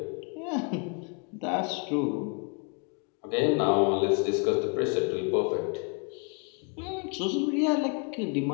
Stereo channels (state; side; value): quieter; right; 36.1 dB